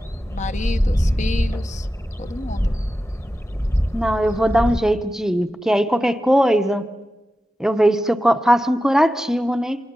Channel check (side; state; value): both; normal; correlation 0.92